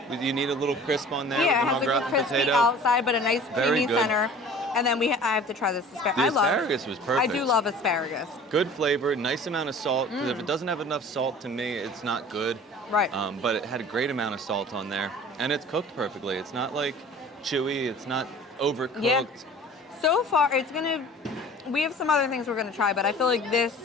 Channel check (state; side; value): normal; both; correlation 0.44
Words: You need a little crisp on there. Yeah, with it has an like a crispy outside, but a nice creamy center. And then I have to try this asparagus. The asparagus was perfect. I do love asparagus. Good flavor, nice amount of salt. Because if it doesn't have enough salt, to me, it's not good. Right. But it had a great amount of salt on there, and it's cooked perfectly. It's not like chewy. It's not overcooked. Yeah. So far, we have some other things we're gonna try, but I feel like this